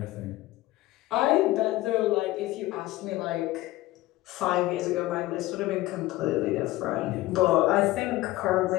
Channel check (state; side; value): quieter; right; 17.6 dB